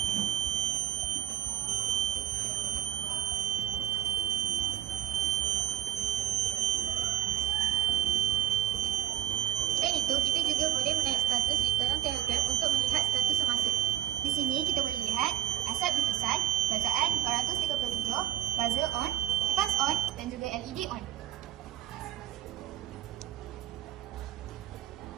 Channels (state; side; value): quieter; left; 11.9 dB